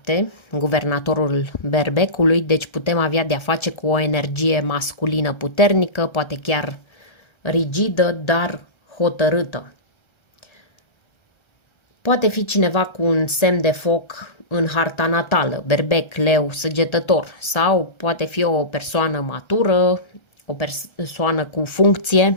guvernatorul berbecului, deci putem avea de-a face cu o energie masculină puternică, poate chiar rigidă, dar hotărâtă. Poate fi cineva cu un semn de foc în harta natală, berbec, leu, săgetător, sau poate fi o persoană matură, o persoană cu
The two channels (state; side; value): late; right; 1.3 ms